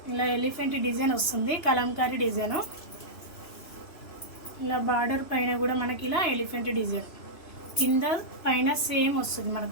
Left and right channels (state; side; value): late; right; 3.0 ms